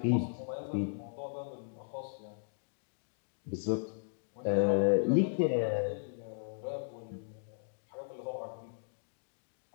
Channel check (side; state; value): right; silent; digital silence